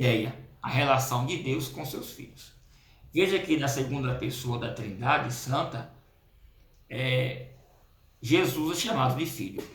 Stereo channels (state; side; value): identical; both; correlation 1.00